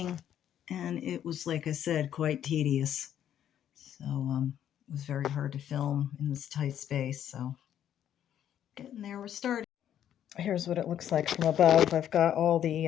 and it was, like I said, quite tedious. So it was very hard to film in this tight space. So getting there, we're starting. Here's what it looks like from above. I've got all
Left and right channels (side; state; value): right; quieter; 10.3 dB